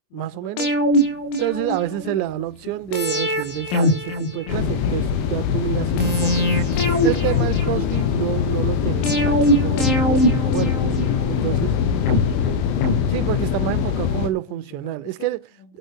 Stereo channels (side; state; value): right; late; 27 ms